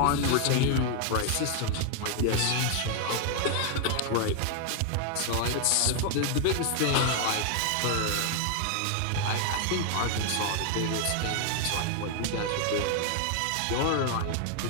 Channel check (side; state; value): both; different; correlation 0.00